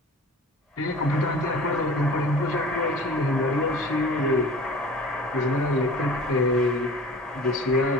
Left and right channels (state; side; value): normal; both; correlation 0.42